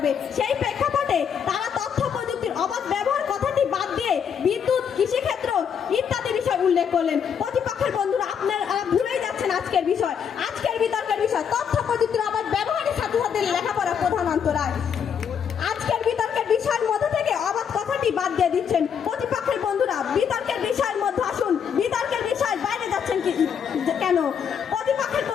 সেই প্রেক্ষাপটে তারা তথ্য প্রযুক্তির অবাধ ব্যবহার কথাটি বাদ দিয়ে বিদ্যুৎ, কৃষিক্ষেত্র ইত্যাদি বিষয় উল্লেখ করলেন। প্রতিপক্ষের বন্ধুরা, আপনারা ভুলেই যাচ্ছেন আজকের বিষয়, আজকের বিতর্কের বিষয় তথ্য প্রযুক্তির অবাধ ব্যবহারের সাথে সাথে লেখাপড়া প্রধান অন্তরায়। আজকের বিতর্কের বিষয়ের মধ্যে থেকে অবাধ কথাটি বাদ দিয়ে দিচ্ছেন। প্রতিপক্ষের বন্ধুরা, বিতর্কের বিষয়ের মধ্যে আসুন, বিতর্কের বিষয় বাইরে যাচ্ছেন কেন? প্রতিপক্ষের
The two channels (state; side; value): quieter; right; 7.6 dB